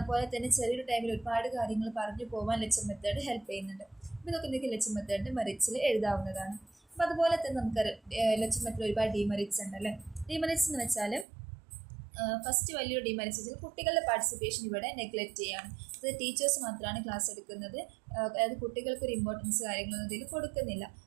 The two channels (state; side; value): drops out; left; at 11.2 s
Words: അതുപോലെ തന്നെ ചെറിയൊരു ടൈമിൽ ഒരുപാട് കാര്യങ്ങൾ പറഞ്ഞു പോകാൻ ലെക്ചർ മെത്തേഡ് ഹെൽപ്പ് ചെയ്യുന്നുണ്ട്. അപ്പോൾ ഇതൊക്കെ എന്തൊക്കെ ലെക്ചർ മെത്തേഡിൻ്റെ മെറിറ്റ്സിൽ എഴുതാവുന്നതാണ്. അപ്പോൾ അതുപോലെ തന്നെ നമുക്ക് ലെക്ചർ മെത്തേഡ് ഒരുപാട് ഡിമെറിറ്റ്സ് ഉണ്ട് അല്ലേ. ഡിമെറിറ്റ്സ് എന്ന് വെച്ചാൽ ഫസ്റ്റ് വലിയൊരു ഡിമെറിറ്റ്സ് വെച്ചാൽ കുട്ടികളുടെ പാർട്ടിസിപ്പേഷൻ ഇവിടെ നെഗ്ലക്റ്റ് ചെയ്യാണ്. അത് ടീച്ചേഴ്സ് മാത്രമാണ് ക്ലാസ് എടുക്കുന്നത്, അതായത് കുട്ടികൾക്കൊരു ഇമ്പോർട്ടൻസ് കാര്യങ്ങളൊന്നും ഇതിൽ കൊടുക്കുന്നില്ല.